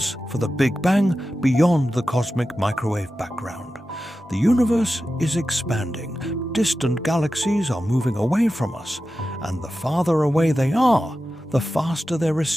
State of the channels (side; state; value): both; normal; correlation 0.92